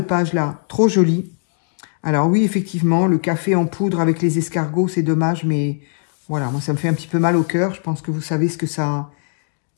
trop joli. Alors oui, effectivement, le café en poudre avec les escargots, c'est dommage, mais voilà, moi, ça me fait un petit peu mal au cœur. Je pense que vous savez ce que ça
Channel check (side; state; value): right; silent; digital silence